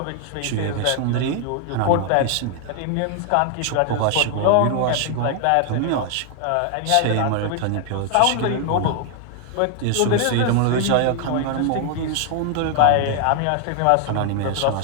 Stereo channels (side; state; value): both; different; correlation 0.00